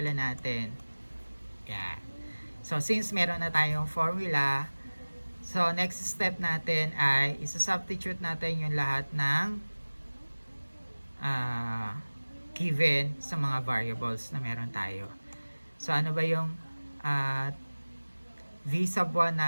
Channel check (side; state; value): both; inverted; correlation -1.00